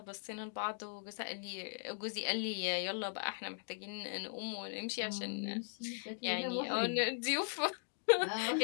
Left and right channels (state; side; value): silent; right; digital silence